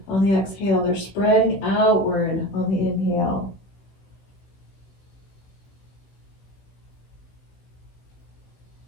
on the exhale. They're spreading outward on the inhale.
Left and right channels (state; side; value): late; right; 16 ms